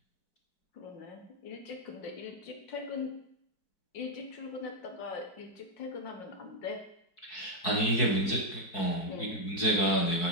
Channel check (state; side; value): late; right; 4.6 ms